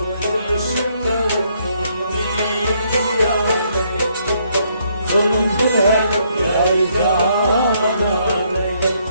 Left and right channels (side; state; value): both; inverted; correlation -0.71